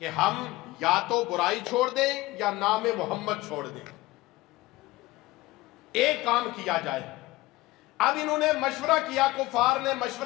کہ ہم یا تو برائی چھوڑ دیں یا نام محمد چھوڑ دیں، ایک کام کیا جائے۔ اب انہوں نے مشورہ کیا، کفار نے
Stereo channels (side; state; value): right; quieter; 19.0 dB